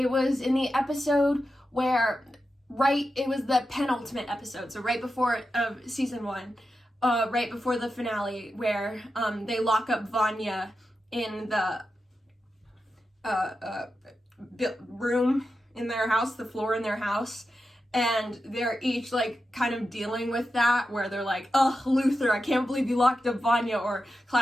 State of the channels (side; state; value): both; normal; correlation 0.90